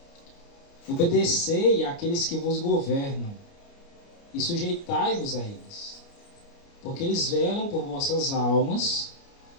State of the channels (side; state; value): right; late; 29 ms